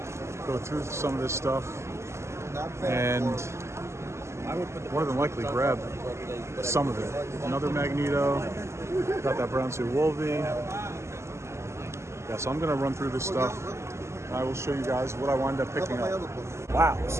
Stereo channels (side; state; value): left; late; 0.13 ms